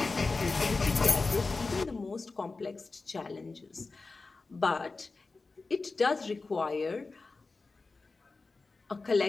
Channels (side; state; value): right; quieter; 3.8 dB